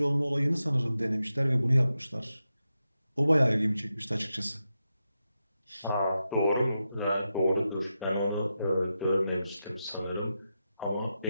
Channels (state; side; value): inverted; both; correlation -0.89